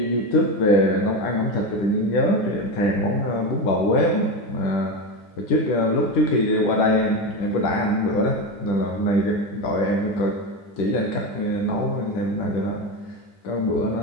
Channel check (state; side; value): late; right; 10 ms